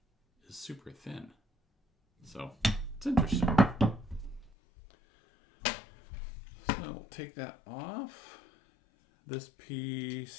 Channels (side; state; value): right; drops out; at 4.5 s